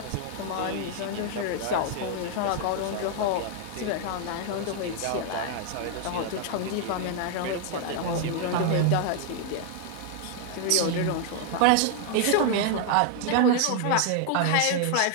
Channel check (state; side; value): different; both; correlation 0.00